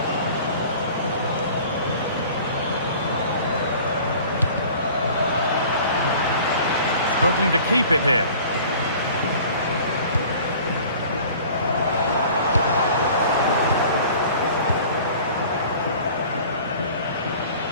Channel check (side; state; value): both; inverted; correlation -0.46